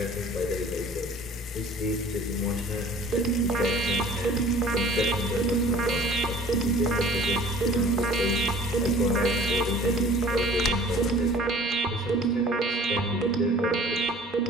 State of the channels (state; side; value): normal; both; correlation 0.48